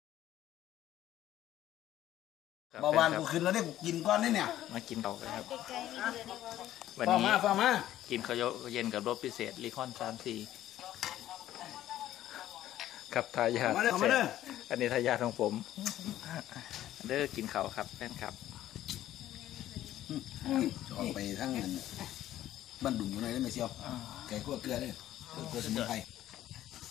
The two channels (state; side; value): quieter; right; 13.1 dB